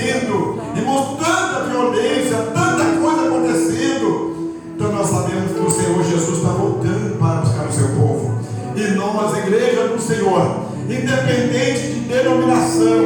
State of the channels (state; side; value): identical; both; correlation 1.00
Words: irmãos, tanta violência, tanta coisa acontecendo. Então nós sabemos que o Senhor Jesus está voltando para buscar o seu povo, e nós, igreja do Senhor, independente de